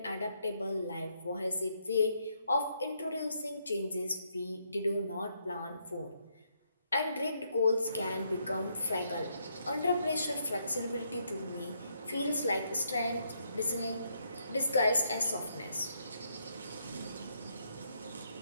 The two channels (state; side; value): inverted; both; correlation -0.76